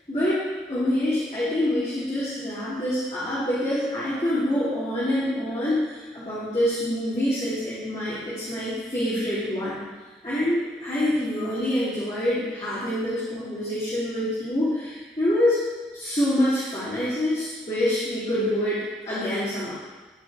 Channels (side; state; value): both; normal; correlation 0.71